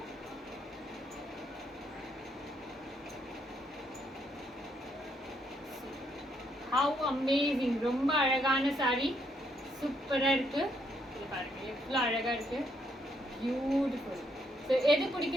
How amazing! ரொம்ப அழகான saree, சூப்பரா இருக்கு. இது பாருங்க எவ்வளவு அழகா இருக்கு, பியூட்டிஃபுல். ஸோ எது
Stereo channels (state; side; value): normal; both; correlation 0.73